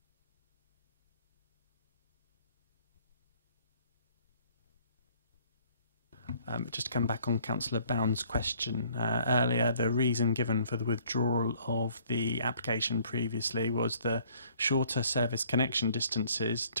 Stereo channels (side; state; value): both; inverted; correlation -0.59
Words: Just to come back on Councillor Bound's question earlier, the reason given for the withdrawal of the application previously was the shorter service connection distances